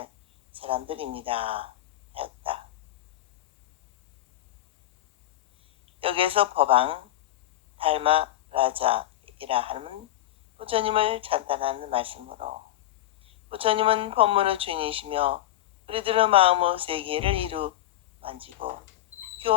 사람들입니다 하였다. 여기에서 법왕 달마 라자이라 하는 부처님을 찬탄하는 말씀으로 부처님은 법문의 주인이시며 우리들의 마음의 세계를 이루 만지고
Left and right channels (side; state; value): right; quieter; 14.0 dB